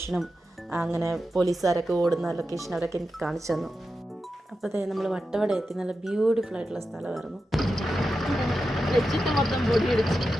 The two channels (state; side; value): normal; both; correlation 0.90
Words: അങ്ങനെ പോലീസുകാരൊക്കെ ഓടുന്ന ലൊക്കേഷൻ അവരൊക്കെ എനിക്ക് കാണിച്ചു തന്നു. അപ്പോൾ നമ്മൾ വട്ടവട എത്തി. നല്ല ബ്യൂട്ടിഫുൾ ആയിട്ടുള്ള സ്ഥലമായിരുന്നു. മൊത്തം പൊടി അടിച്ച്